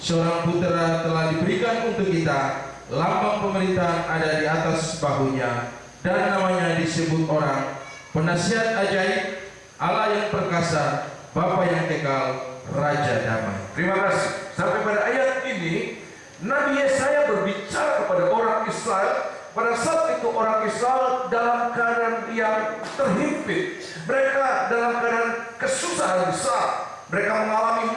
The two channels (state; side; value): identical; both; correlation 1.00